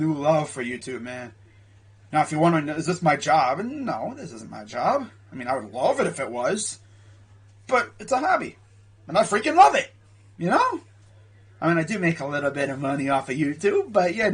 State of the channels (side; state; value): both; identical; correlation 1.00